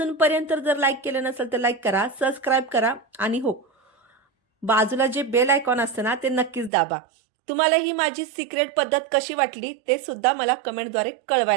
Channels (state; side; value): drops out; left; at 6.7 s